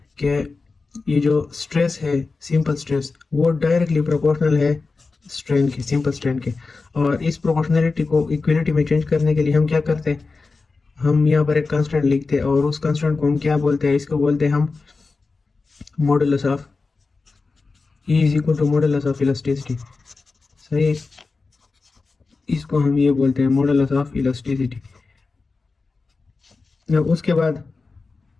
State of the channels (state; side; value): quieter; right; 4.1 dB